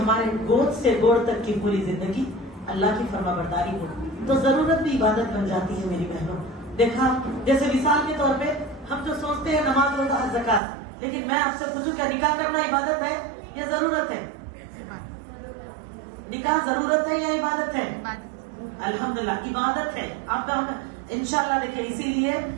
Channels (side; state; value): left; drops out; at 10.6 s